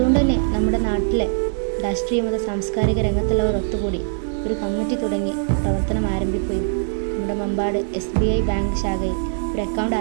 തന്നെ നമ്മുടെ നാട്ടിലെ രാഷ്ട്രീയ മത സാംസ്കാരിക രംഗത്തുള്ളവർ ഒത്തുകൂടി ഒരു കമ്മിറ്റി തുടങ്ങി പ്രവർത്തനം ആരംഭിക്കുകയും നമ്മുടെ മമ്പാട് SBI ബാങ്ക് ശാഖയിൽ ഒരു അക്കൗണ്ട്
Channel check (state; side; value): silent; left; 65 dB below the other